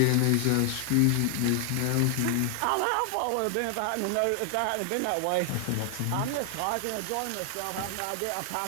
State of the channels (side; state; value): both; different; correlation 0.00